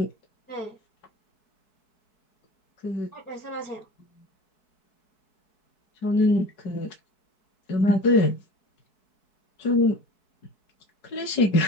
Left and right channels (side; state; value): right; late; 4.6 ms